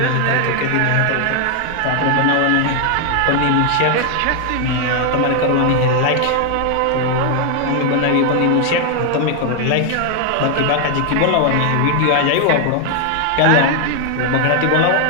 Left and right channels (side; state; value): both; different; correlation 0.00